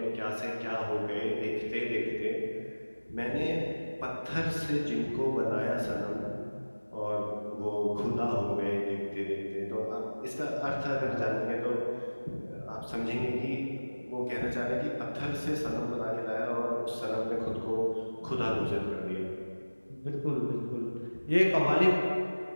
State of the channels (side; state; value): both; inverted; correlation -1.00